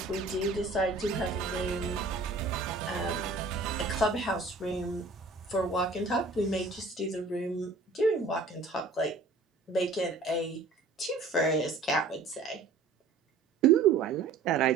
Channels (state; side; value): quieter; left; 3.8 dB